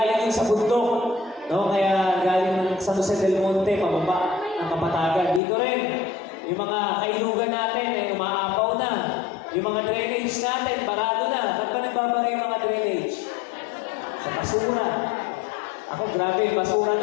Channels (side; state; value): right; drops out; at 5.4 s